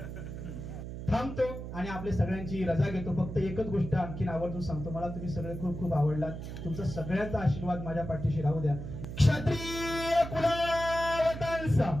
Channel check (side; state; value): right; noise; hum, 8 dB below the sound